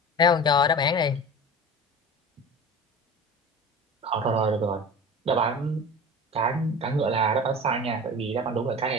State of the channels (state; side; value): normal; both; correlation 0.35